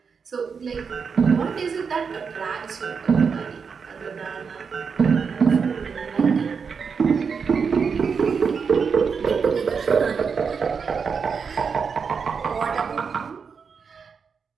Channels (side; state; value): left; quieter; 5.9 dB